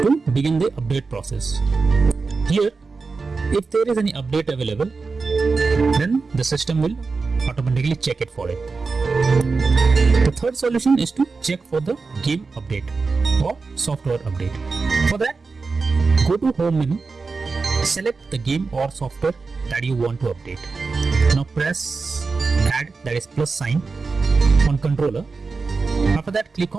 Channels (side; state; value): left; quieter; 4.3 dB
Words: to begin the update process. Here, if there is any update available, then the system will automatically check it for it. The third solution is to check for the game update or software update. For that, go to home menu, select the game or software that you want to update. Now press add, that is plus sign, on controller. After that, click